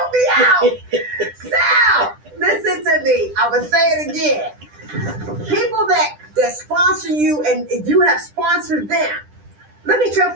me out. Sal, listen to me. I will say it again. People that sponsor you and you have sponsored them. Look at your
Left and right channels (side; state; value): left; late; 10 ms